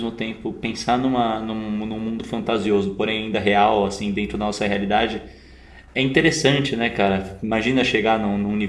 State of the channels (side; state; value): both; identical; correlation 1.00